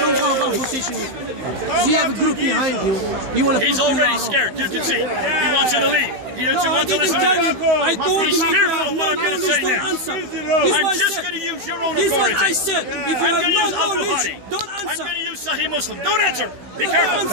You have a group behind you. He's already scared. You can see. He wants you to leave. He doesn't want to listen to this. He's fearful of what I'm going to say next. I'm just going to use your own authority. I'm going to use Al-Bukhari. I'm going to use Sahih Muslim. Don't answer. Be careful.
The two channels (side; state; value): left; late; 16 ms